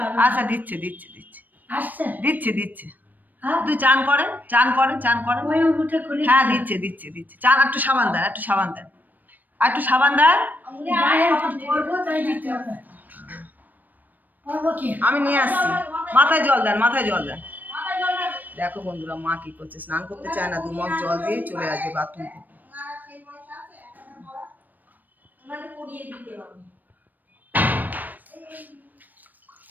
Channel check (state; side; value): late; left; 0.086 ms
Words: আচ্ছা দিচ্ছে দিচ্ছে দিচ্ছে দিচ্ছে দিচ্ছে। তুই চান করেন চান করেন চান করেন। হ্যাঁ দিচ্ছে দিচ্ছে দিচ্ছে। চান একটু সাবান দেন, একটু সাবান দেন, আর একটু সাবান দেন। আমি নিয়ে আসছি। মাথায় জল দেন, মাথায় জল দেন। দেখো বন্ধুরা, মা কি করছে, স্নান করতে চায় না, 2 মগ জল দিয়ে চলে আসবে বাথরুম থেকে।